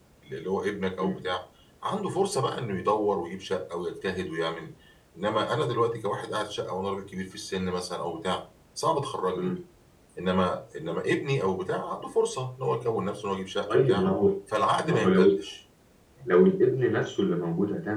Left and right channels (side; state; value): both; identical; correlation 1.00